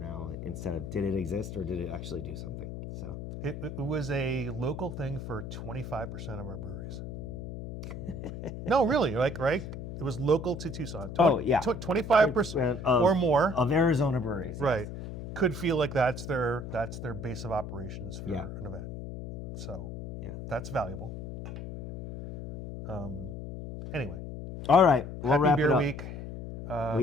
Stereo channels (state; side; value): noise; left; hum, 8 dB below the sound